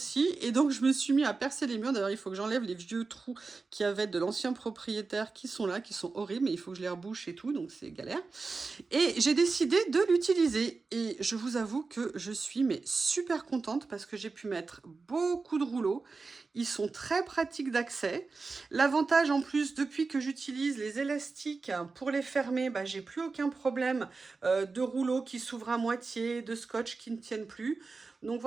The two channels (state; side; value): quieter; left; 4.2 dB